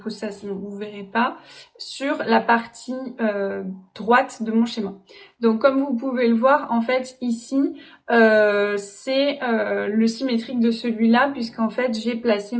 ça sinon vous ne verrez pas, sur la partie droite de mon schéma. Donc comme vous pouvez le voir, en fait ici, c'est le symétrique de celui-là, puisqu'en fait j'ai placé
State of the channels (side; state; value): both; identical; correlation 1.00